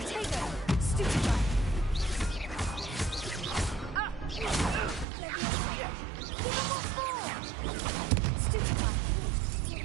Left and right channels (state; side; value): drops out; left; at 5.1 s